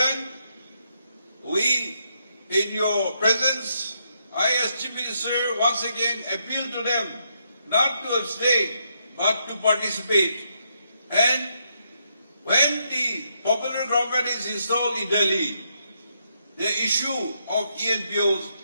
We, in your presence, I as Chief Minister once again appeal to them not to abstain but to participate. And when the popular government is installed in Delhi, the issue of ENPOs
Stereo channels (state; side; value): inverted; both; correlation -0.78